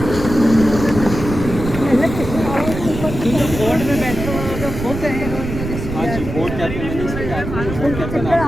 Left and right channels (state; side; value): noise; right; rumble, 7 dB below the sound